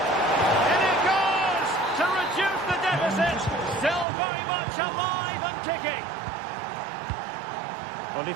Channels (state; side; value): drops out; left; at 4.0 s